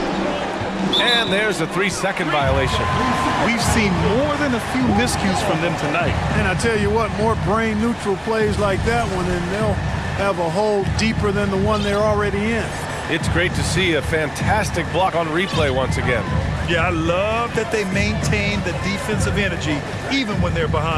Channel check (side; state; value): both; identical; correlation 1.00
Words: And there's a 3-second violation. We've seen more than a few miscues from them tonight. And I tell you what, more brain-neutral plays like that one, and they'll have a hole deeper than the one they're already in. It's great to see a fantastic block on replay once again. Yeah, I love that they maintain the defensive energy even when they're